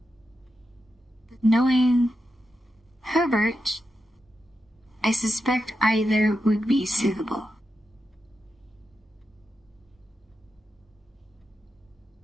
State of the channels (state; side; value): normal; both; correlation 0.88